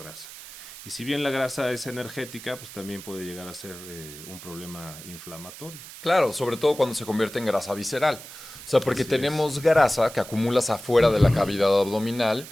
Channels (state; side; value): noise; right; hiss, 15 dB below the sound